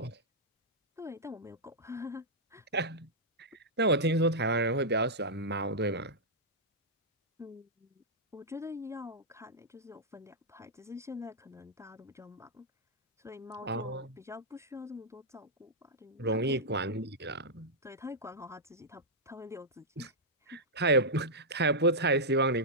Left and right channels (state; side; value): normal; both; correlation -0.08